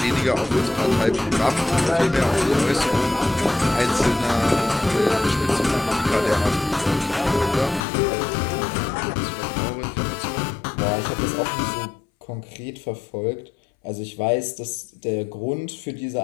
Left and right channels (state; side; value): drops out; right; at 7.9 s